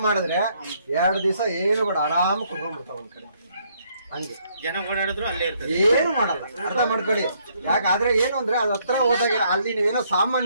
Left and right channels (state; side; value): inverted; both; correlation -0.69